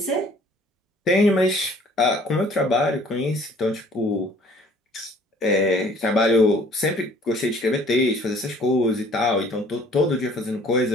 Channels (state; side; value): normal; both; correlation 0.55